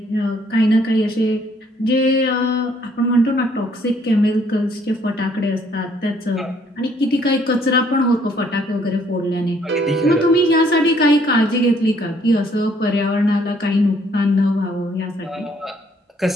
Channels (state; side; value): normal; both; correlation 0.65